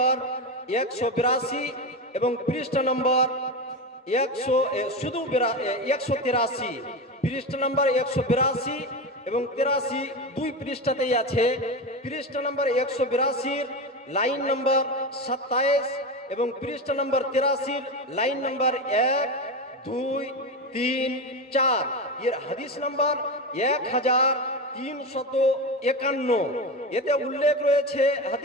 182 এবং পৃষ্ঠা নম্বর 183, পৃষ্ঠা নম্বর 182 এবং 83, দুই পৃষ্ঠাতেই আছে। পৃষ্ঠা নম্বর 182 লাইন নম্বর 27 এবং পৃষ্ঠা নম্বর 83 লাইন নম্বর 1, 2, 3, 4, এর হাদিস নম্বর 1351। এতে উল্লেখ রয়েছে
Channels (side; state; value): both; normal; correlation 0.19